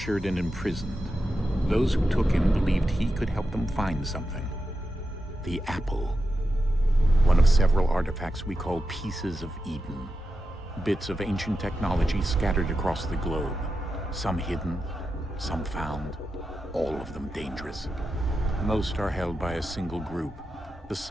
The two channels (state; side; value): normal; both; correlation 0.89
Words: and imprisoned. Those who took him believed he could help them find something. The apple. One of several artifacts we call pieces of Eden. Bits of ancient technology scattered across the globe. Some hidden, some found, all of them dangerous. Most are held by a single group, the